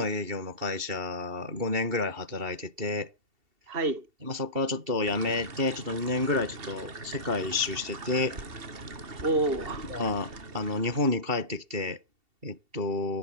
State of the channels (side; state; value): left; late; 2.7 ms